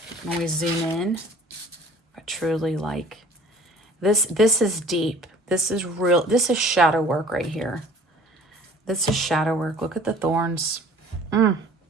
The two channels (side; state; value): both; normal; correlation 0.50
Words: When we zoom in, I truly like this. This is deep. This is real. This is shadow work right here. This is shadow work. Look at the thorns. And